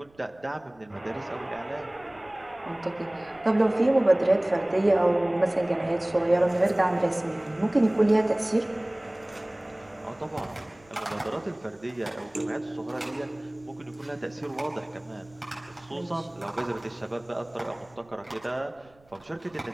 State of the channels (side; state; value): right; noise; rumble, 30 dB below the sound